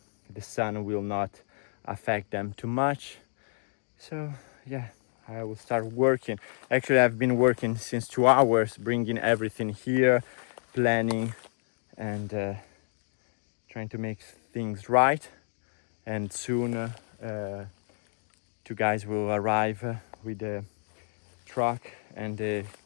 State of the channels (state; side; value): silent; right; digital silence